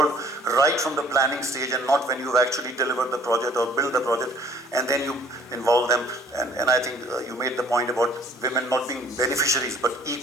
right from the planning stage and not when you've actually delivered the project or built the project and then you involve them. And I think you made the point about women not being beneficiaries but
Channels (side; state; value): both; normal; correlation 0.56